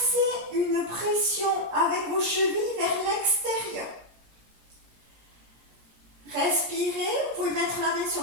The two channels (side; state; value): left; late; 17 ms